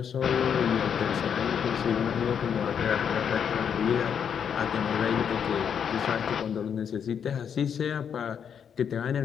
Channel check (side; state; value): right; quieter; 7.8 dB